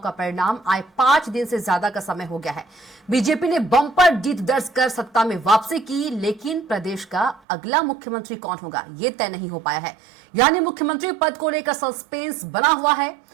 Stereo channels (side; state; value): left; drops out; at 7.4 s